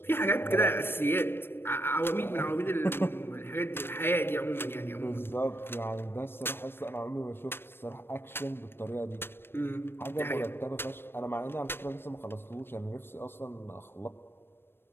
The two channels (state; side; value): late; right; 0.11 ms